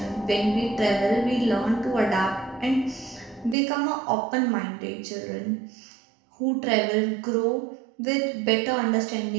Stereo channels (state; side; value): drops out; left; at 3.6 s